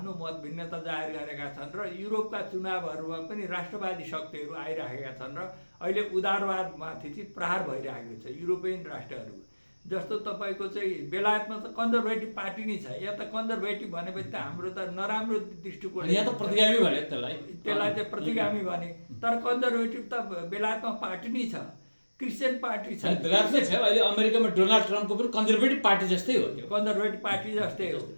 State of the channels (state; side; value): inverted; both; correlation -1.00